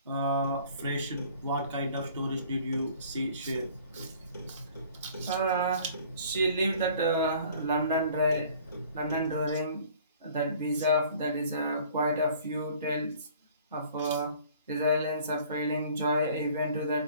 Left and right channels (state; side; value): inverted; both; correlation -0.52